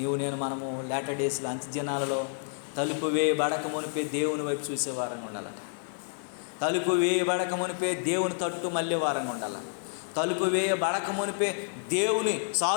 మనము లేటర్ డేస్లో, అంత్యదినాలలో తలుపు వేయబడక మునిపే దేవుని వైపు చూసేవారంగా ఉండాలట. తలుపు వేయబడక మునిపే దేవుని తట్టు మళ్ళీ వారంగా ఉండాలి. తలుపు వేయబడక మునిపే దేవుని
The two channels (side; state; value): right; silent; 58 dB below the other